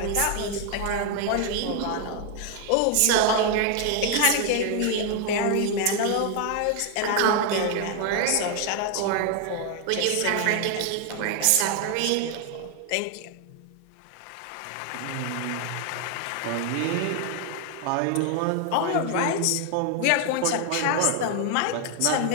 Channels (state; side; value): different; both; correlation 0.01